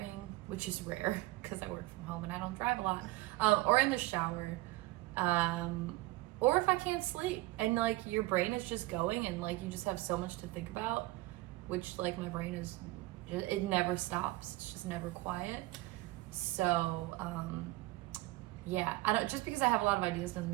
which is rare because I work from home and I don't drive a lot, or in the shower, or if I can't sleep and like your brain is just going and like you just have so much to think about, which like my brain is, it never stops. It's just never quiet. So yeah, I don't, just because I have a lot of ideas doesn't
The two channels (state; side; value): quieter; left; 19.4 dB